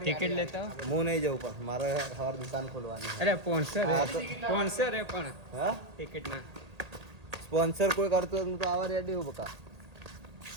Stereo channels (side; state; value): left; late; 1.8 ms